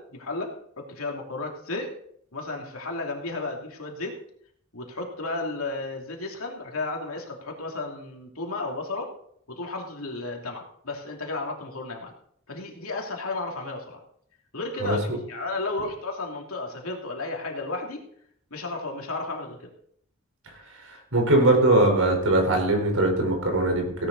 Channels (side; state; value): both; normal; correlation -0.07